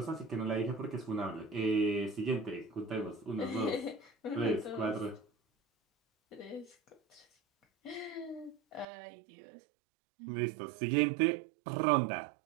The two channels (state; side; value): drops out; left; at 8.8 s